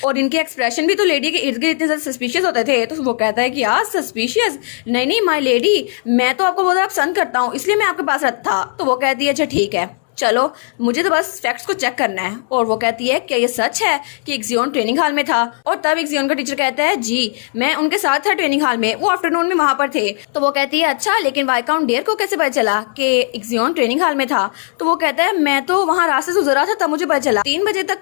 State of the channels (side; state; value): right; silent; 68 dB below the other